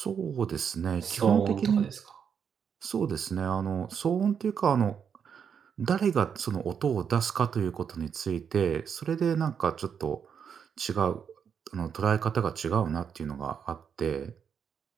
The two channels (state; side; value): quieter; left; 7.3 dB